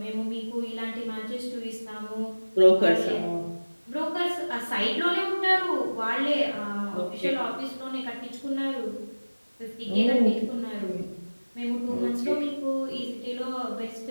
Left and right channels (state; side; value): inverted; both; correlation -1.00